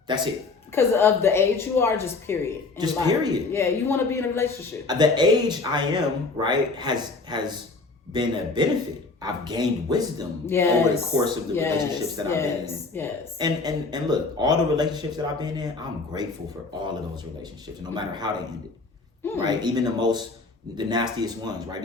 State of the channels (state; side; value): quieter; right; 3.8 dB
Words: Because of the age you are, just period. Just period. Yeah, you want to be in a relationship. The age I am, right, has been a benefit. I've gained wisdom over the course of the relationships that I've been in. Yes. And look, all the relationships that I've been in, I'm grateful for all of those relationships, no matter how they ended. Right? Even the nastiest ones, right?